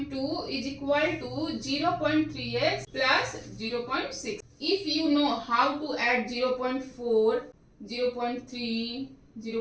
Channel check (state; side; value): identical; both; correlation 1.00